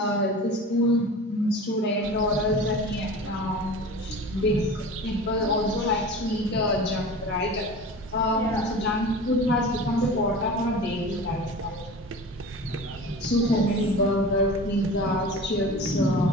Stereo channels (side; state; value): both; normal; correlation 0.36